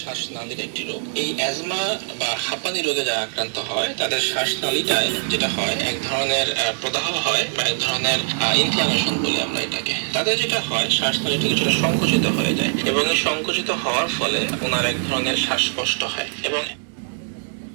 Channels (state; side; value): silent; left; digital silence